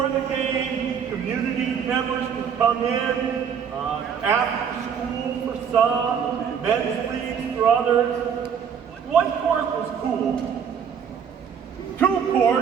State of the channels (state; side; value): quieter; left; 7.4 dB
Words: the game, community members can come in, after school for some, men's leagues for others. One court was cool. 2